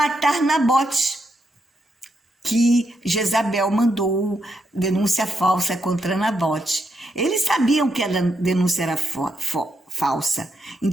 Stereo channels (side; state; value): both; normal; correlation 0.81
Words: Nabote, que Jezabel mandou denúncia falsa contra Nabote. Eles sabiam que a denúncia era falsa,